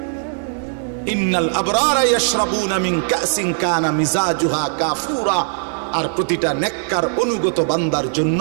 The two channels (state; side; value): silent; left; digital silence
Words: ইন্নাল আবরারা ইয়াশরাবুনা মিন কাসিন কানা মিজাজুহা কাফুরা। আর প্রতিটা নেককার অনুগত বান্দার জন্য